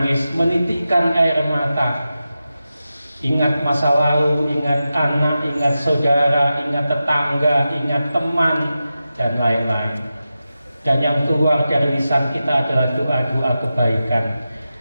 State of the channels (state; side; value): inverted; both; correlation -0.92